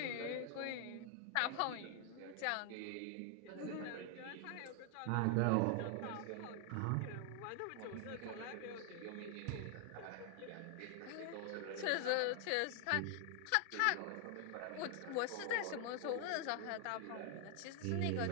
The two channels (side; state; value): both; different; correlation 0.00